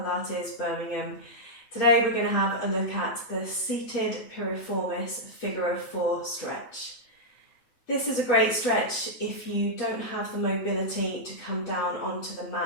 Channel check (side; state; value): right; late; 8.6 ms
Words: Birmingham. Today we're going to have a look at the Seated Piriformis Figure of 4 stretch. This is a great stretch if you don't have the mobility to come down onto the